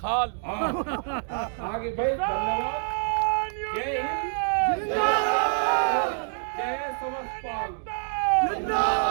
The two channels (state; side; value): silent; left; 61 dB below the other